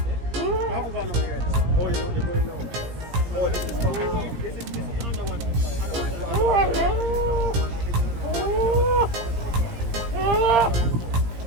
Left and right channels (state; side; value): late; left; 17 ms